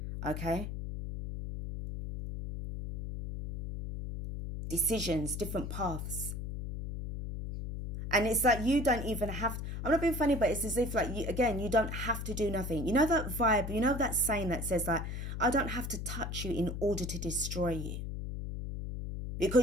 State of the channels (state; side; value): noise; left; hum, 5 dB below the sound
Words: Okay? Decisions, different paths. And it's like you don't even have, I'm not being funny, but it's as if like, you don't have to do nothing. You know that vibe, you know that saying that says like, I don't have to touch you in order to destroy you.